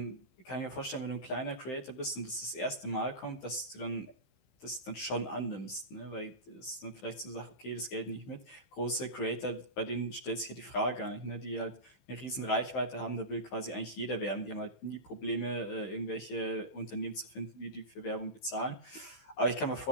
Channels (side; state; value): right; late; 16 ms